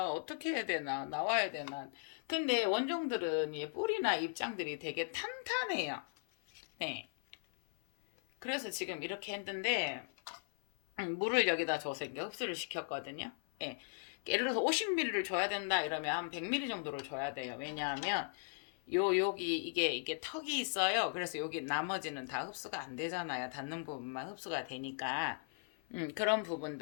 어떻게 해야 되나 나와야 되나. 근데 원종들은 이 뿌리나 입장들이 되게 탄탄해요. 네. 그래서 지금 이렇게 했는데 물을 여기다 줘서 이렇게 흡수를 시켰거든요. 예. 예를 들어서 50ml를 줘야 된다 이러면 한 100ml 정도를 줘야 돼요. 왜냐하면 여기 이게 턱이 있어요. 그래서 여기 나머지는 다 흡수가 안 되잖아요. 닿는 부분만 흡수가 되니까 그런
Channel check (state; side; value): silent; right; 53 dB below the other